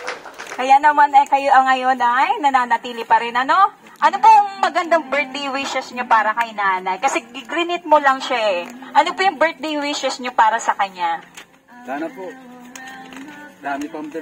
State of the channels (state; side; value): identical; both; correlation 1.00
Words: Kaya naman ay kayo ngayon ay nananatili pa rin, ano? Ano pong magandang birthday wishes niyo para kay nanay? Kasi grinit mo lang siya eh. Ano po yung birthday wishes niyo para sa kanya? Sana po. Dami pang